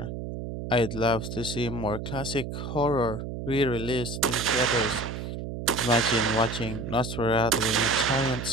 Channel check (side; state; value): right; noise; hum, 6 dB below the sound